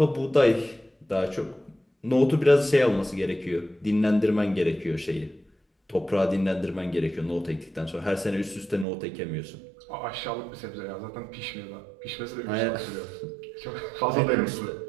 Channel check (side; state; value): left; drops out; at 8.8 s